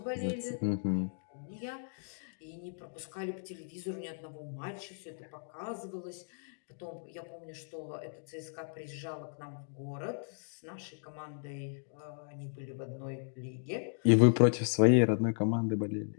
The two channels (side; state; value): right; silent; digital silence